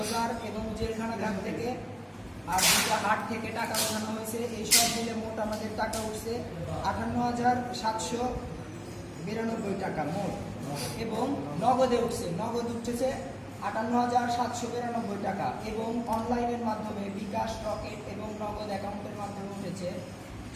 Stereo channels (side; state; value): both; identical; correlation 1.00